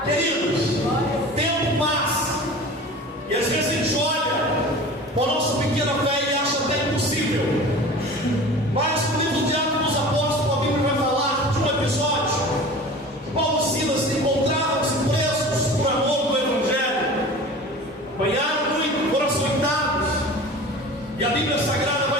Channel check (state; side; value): normal; both; correlation 0.38